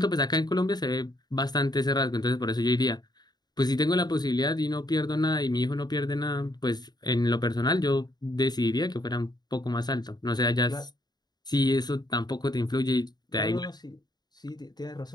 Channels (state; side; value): late; right; 0.20 ms